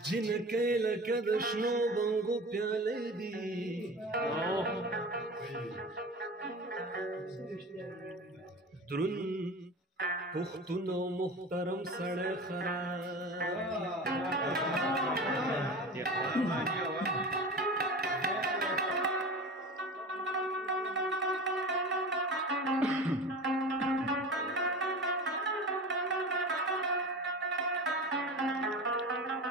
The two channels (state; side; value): normal; both; correlation 0.32